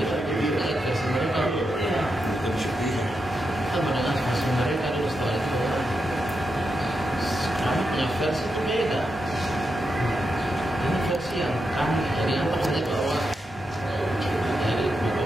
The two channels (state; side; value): normal; both; correlation 0.86